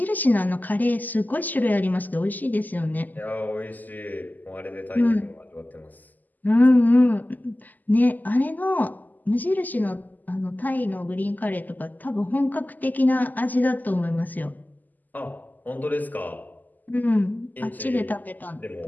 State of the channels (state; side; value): late; right; 0.084 ms